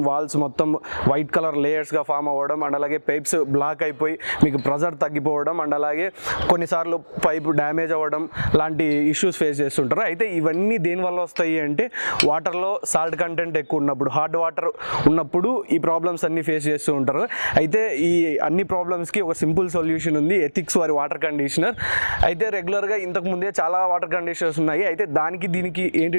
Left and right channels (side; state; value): both; inverted; correlation -1.00